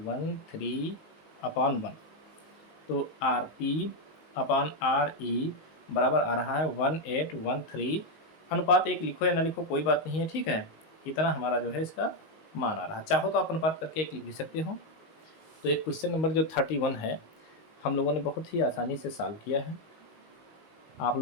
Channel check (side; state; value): right; late; 19 ms